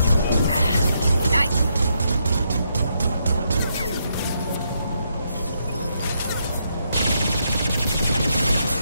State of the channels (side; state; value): both; inverted; correlation -0.78